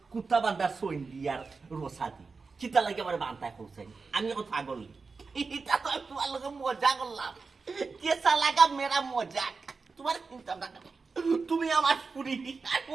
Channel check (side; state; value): left; quieter; 4.5 dB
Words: কুত্তা বান্দার সইন দিয়ার রোসাদি কিতা লাগে আমারে বানতা করছেন আমি এখন পাগল এটা তো তোমার লগে মজা করলাম কেসা লাগা মেরা মজা তোমার চিন্তা না তুমি আমার পুরি আর